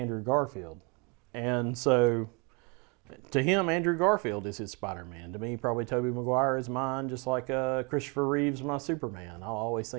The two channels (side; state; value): left; quieter; 31.6 dB